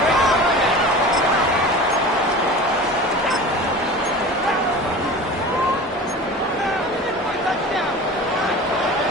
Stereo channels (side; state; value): both; normal; correlation 0.36